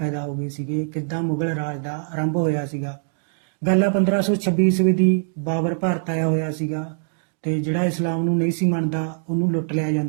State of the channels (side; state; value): left; silent; digital silence